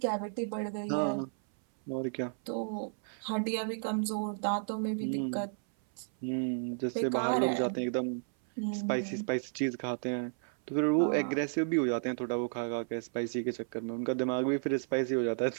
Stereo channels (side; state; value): left; silent; 56 dB below the other